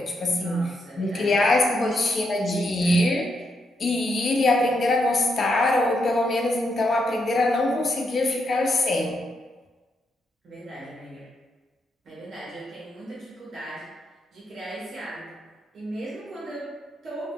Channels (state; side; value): normal; both; correlation 0.80